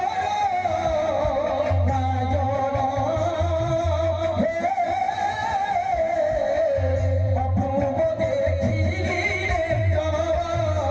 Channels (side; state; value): both; identical; correlation 1.00